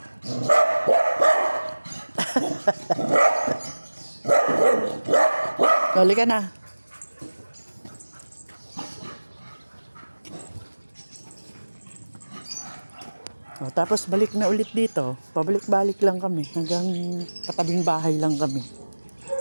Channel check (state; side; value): inverted; both; correlation -1.00